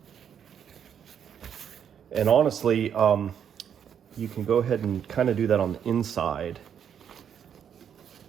And honestly, you can go ahead and kind of do that on the inside.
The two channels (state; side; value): quieter; left; 8.5 dB